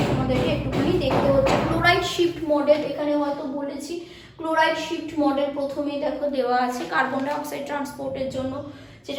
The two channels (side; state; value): both; identical; correlation 1.00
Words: তোমাদেরকে একটুখানি দেখতে হচ্ছে। ক্লোরাইড শিফট মডেল, এখানে হয়তো বলেছি, ক্লোরাইড শিফট মডেল প্রথমেই দেখো দেওয়া আছে, কার্বন ডাইঅক্সাইড ট্রান্সপোর্টের জন্য